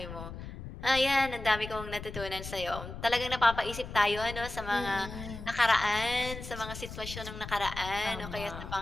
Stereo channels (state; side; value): noise; left; rumble, 10 dB below the sound